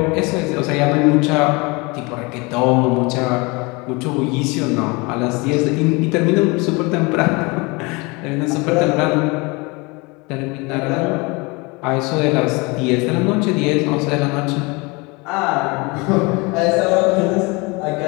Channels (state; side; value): quieter; right; 26.8 dB